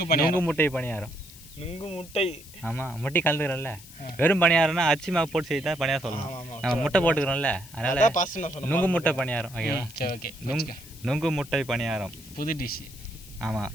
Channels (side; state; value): left; noise; hiss, 19 dB below the sound